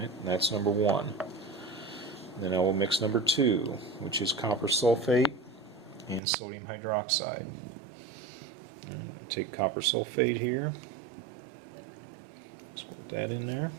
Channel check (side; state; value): left; drops out; at 6.2 s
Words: That's number one. Then I will mix number two, which is copper sulfate and sodium hydroxide. Take copper sulfate here, just put that in there.